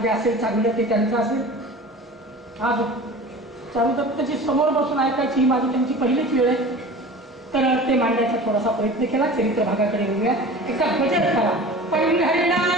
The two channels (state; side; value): normal; both; correlation 0.38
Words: जे असेल चांगलं ते त्यांचं असेल. आज चारुदत्तची समोर बसून ऐकायची ही माझी त्यांची पहिलीच वेळ आहे, तर ते मांडण्याचा थोडासा प्रयत्न केला. चरित्र भागाकडे येऊया. एकदा भजन करा.